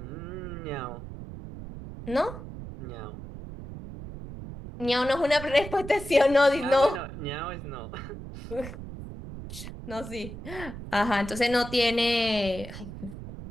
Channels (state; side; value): noise; right; rumble, 11 dB below the sound